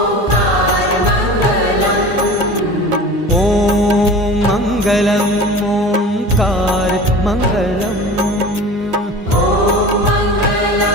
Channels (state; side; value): normal; both; correlation 0.37